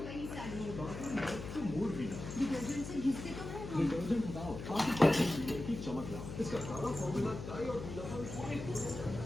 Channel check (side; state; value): left; noise; hum, 8 dB below the sound